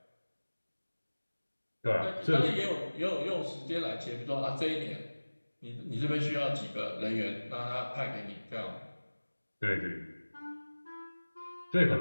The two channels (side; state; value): both; inverted; correlation -1.00